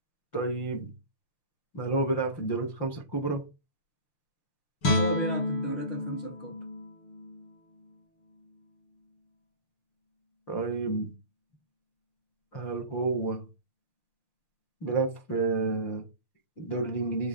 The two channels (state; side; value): late; right; 6.6 ms